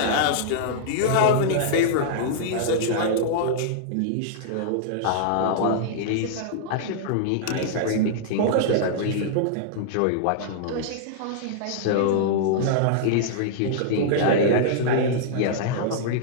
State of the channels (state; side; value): different; both; correlation -0.02